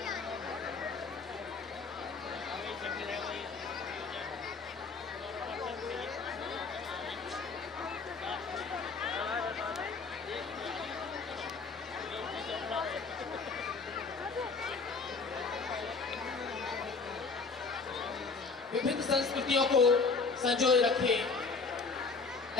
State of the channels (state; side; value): quieter; right; 4.4 dB